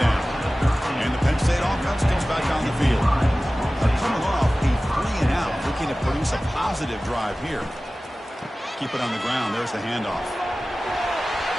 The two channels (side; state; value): both; normal; correlation 0.97